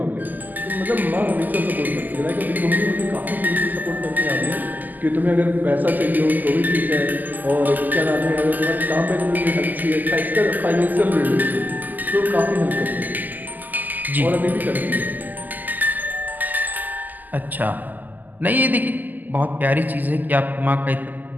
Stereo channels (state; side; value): late; left; 0.084 ms